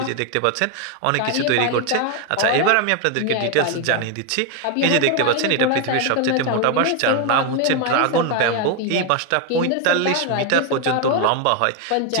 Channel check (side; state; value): both; different; correlation 0.01